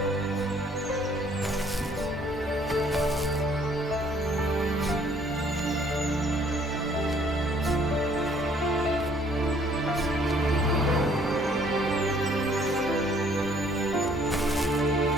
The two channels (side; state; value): both; normal; correlation 0.61